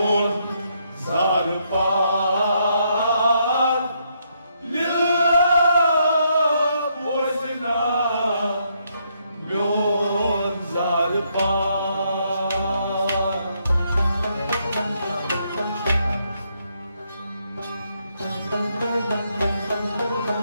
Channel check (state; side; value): inverted; both; correlation -0.75